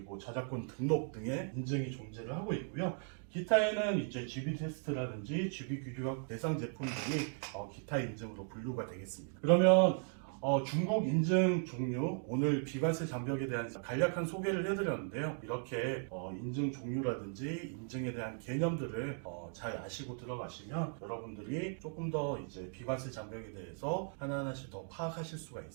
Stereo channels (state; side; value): silent; left; 53 dB below the other